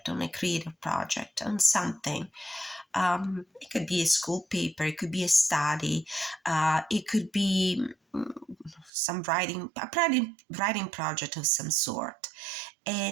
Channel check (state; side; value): drops out; left; at 8.9 s